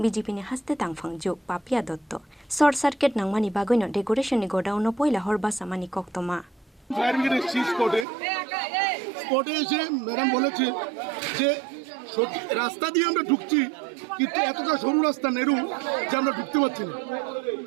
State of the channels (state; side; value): drops out; left; at 8.1 s